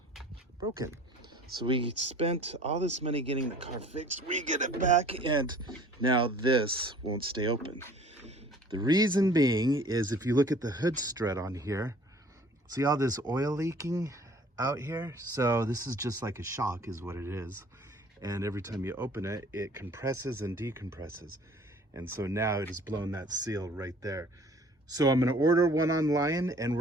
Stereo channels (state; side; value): normal; both; correlation 0.51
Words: broken. So we spent all this money getting the car fixed. We get it back, and now this won't stay open. The reason being is if you look at the hood strut on here, see all this oil leaking out here? So this is just like a shock is what it is. And every time you open it, it compresses and decompresses. And so now it has blown that seal right there. So I'm gonna order one online, and